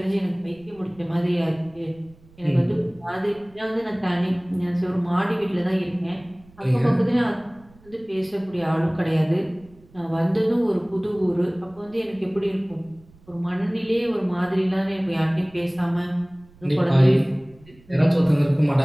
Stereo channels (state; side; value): noise; right; rumble, 26 dB below the sound